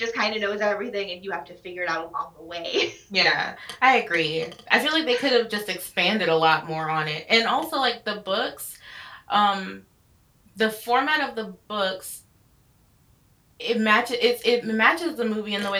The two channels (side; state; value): both; identical; correlation 1.00